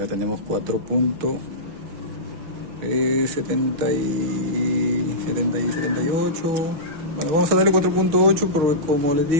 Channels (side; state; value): left; late; 6.3 ms